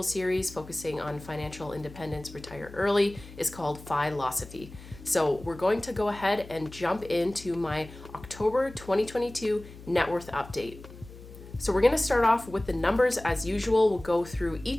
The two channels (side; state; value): left; noise; hum, 17 dB below the sound